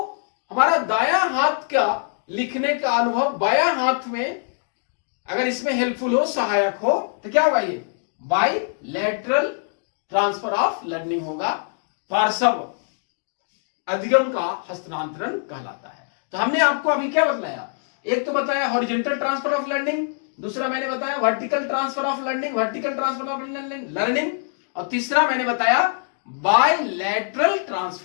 हमारा दायां हाथ का लिखने का अनुभव बायां हाथ में अगर इसमें हेल्पफुल हो, सहायक हो, तो क्या होगा? ये बायलैटरल ट्रांसफर ऑफ लर्निंग होगा, पार्श्व अधिगम का हस्तांतरण कहलाता है। तो हमने आपको अभी क्या बताया? एक तो बताया हॉरिजॉन्टल ट्रांसफर ऑफ लर्निंग, दूसरा मैंने बताया vertical transfer of learning, vertical transfer of learning, और तीसरा मैंने बताया बायलैटरल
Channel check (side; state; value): right; silent; digital silence